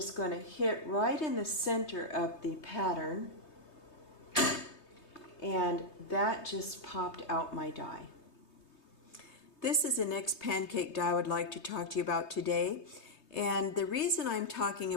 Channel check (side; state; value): right; late; 3.2 ms